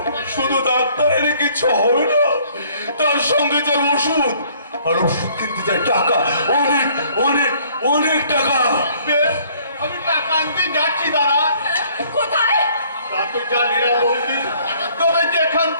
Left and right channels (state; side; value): inverted; both; correlation -0.60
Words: শুধু ডাক্তার এলে কিছু হবে না, তার সঙ্গে যে ওষুধ, আর ওষুধ কিনতে চাই টাকা, অনেক অনেক অনেক টাকা। বেশ, আমি টাকা আনতে যাচ্ছি দাদা। কোথায়? তা তো জানি না বৌদি, তবে যেখান